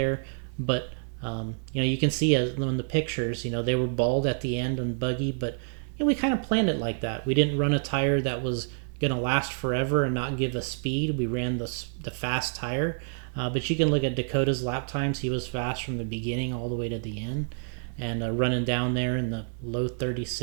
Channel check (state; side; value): silent; left; 59 dB below the other